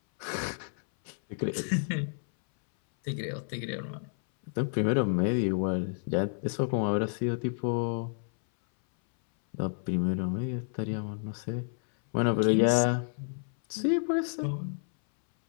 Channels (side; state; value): right; silent; 58 dB below the other